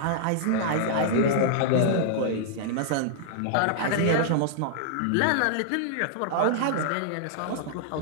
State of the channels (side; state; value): both; different; correlation -0.01